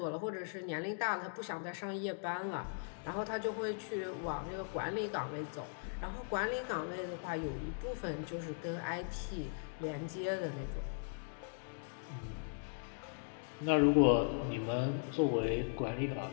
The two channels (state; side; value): silent; right; digital silence